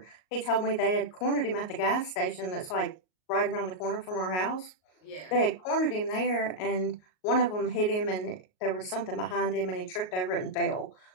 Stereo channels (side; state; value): right; late; 38 ms